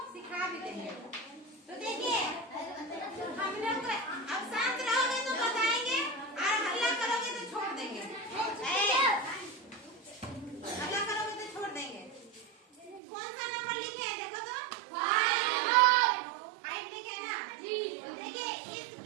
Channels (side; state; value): left; drops out; at 13.0 s